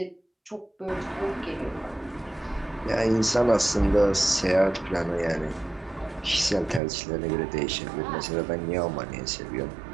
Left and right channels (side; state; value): left; drops out; at 6.8 s